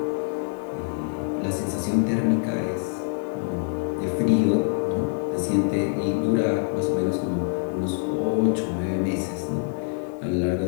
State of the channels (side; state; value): right; silent; digital silence